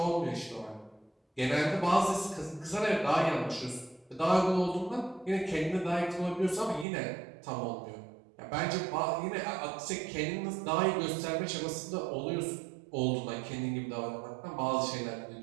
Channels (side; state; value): left; drops out; at 6.9 s